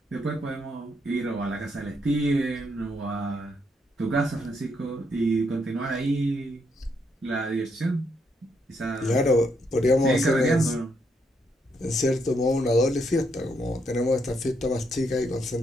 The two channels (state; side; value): normal; both; correlation 0.76